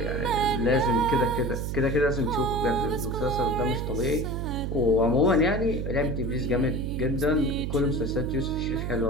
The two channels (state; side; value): noise; right; hum, 3 dB below the sound